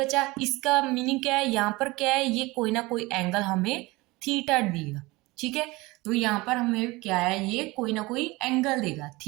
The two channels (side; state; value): left; quieter; 22.2 dB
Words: इसका मीनिंग क्या है, यहाँ पर क्या है, ये कोई ना कोई एंगल हमें थीटा देगा। ठीक है, तो यहाँ पर हमें क्या है, ये कोई ना कोई एंगल देगा।